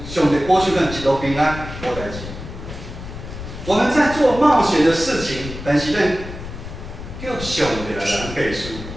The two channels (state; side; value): noise; left; rumble, 10 dB below the sound